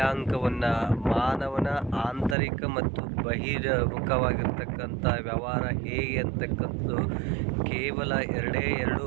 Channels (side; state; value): left; drops out; at 2.4 s